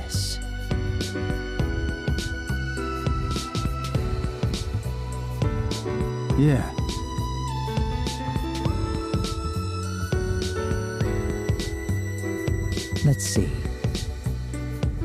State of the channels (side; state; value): both; identical; correlation 1.00